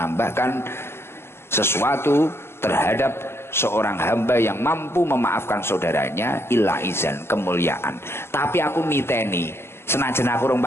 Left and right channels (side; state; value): right; late; 0.12 ms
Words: sesuatu terhadap seorang hamba yang mampu memaafkan saudaranya illa izan, kemuliaan. Tapi aku niteni senajan aku rong